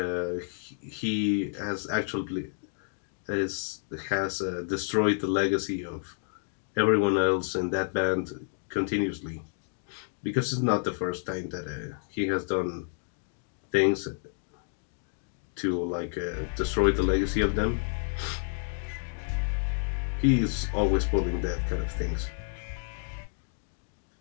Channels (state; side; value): silent; right; digital silence